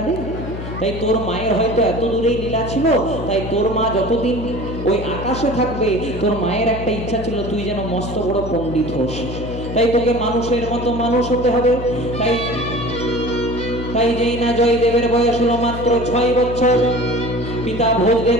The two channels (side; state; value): left; noise; hum, 8 dB below the sound